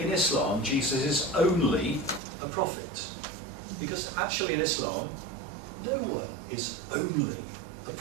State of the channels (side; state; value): left; drops out; at 2.2 s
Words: Islam, Jesus is only a prophet. Because actually in Islam, no one is only a